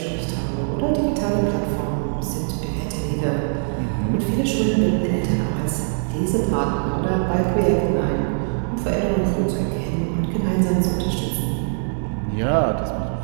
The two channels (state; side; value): silent; left; 64 dB below the other